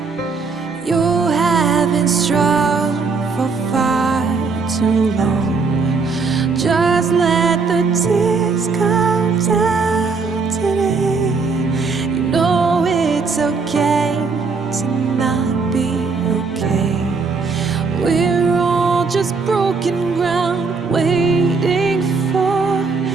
You have been strong for far too long. Just let the tears come down today. You know it's okay to not be okay. We're all just broken ground, waiting for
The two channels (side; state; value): left; quieter; 4.6 dB